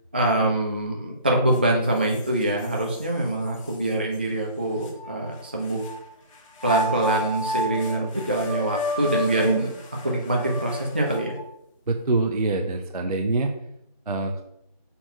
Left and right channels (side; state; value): both; inverted; correlation -0.45